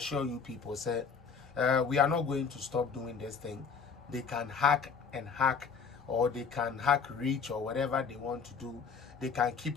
you people, say, we are not going to stop doing this thing. They can hack, or they can hack reach or whatever they want to do. They can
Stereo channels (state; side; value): quieter; right; 5.9 dB